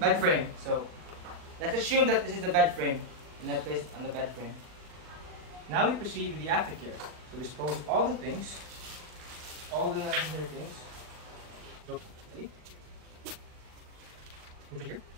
frame. So let's assume that this is the bed frame and then place it on the bed frame. Now we proceed with the aftercare. So dispose all the things, all the necessary things. So, ready? Put it here.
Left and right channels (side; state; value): left; late; 39 ms